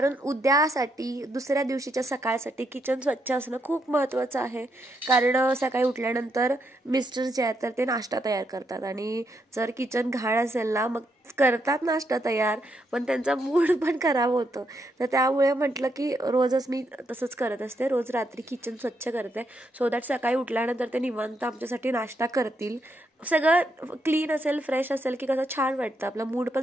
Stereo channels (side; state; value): both; normal; correlation 0.78